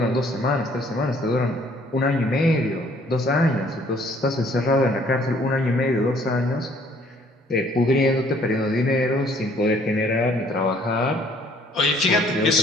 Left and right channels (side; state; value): both; normal; correlation 0.60